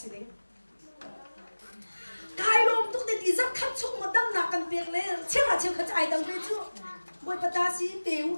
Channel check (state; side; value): inverted; both; correlation -1.00